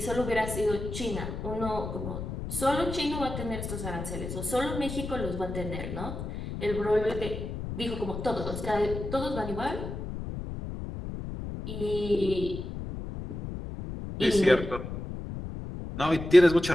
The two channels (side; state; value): left; noise; rumble, 7 dB below the sound